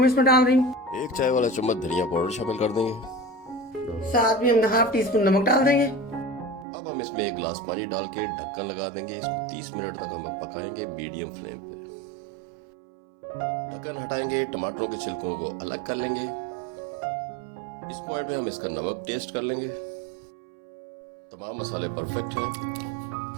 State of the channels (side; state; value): left; drops out; at 6.7 s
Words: इसमें डाल रही हूँ। 1 चाय वाला चम्मच धनिया पाउडर शामिल कर देंगे। साथ में हम हाफ टी स्पून नमक डाल देंगे। अब हम इसमें 1 गिलास पानी डाल के ढक्कन लगा देंगे। इसको 30 मिनट तक हम पकाएंगे मीडियम फ्लेम पे। ढक्कन हटाएंगे, टमाटरों के छिलकों को अलग कर लेंगे। इस पॉइंट में हम इसका नमक टेस्ट कर लेंगे। तमाम मसाले परफेक्ट हैं।